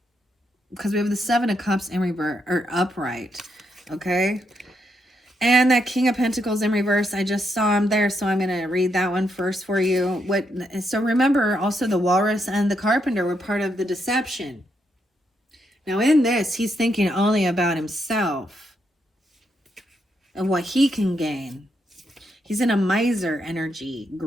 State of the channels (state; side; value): normal; both; correlation 0.79